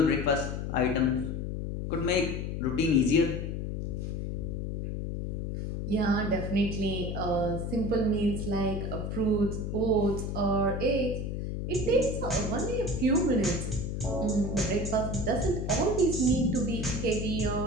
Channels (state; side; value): noise; left; hum, 3 dB below the sound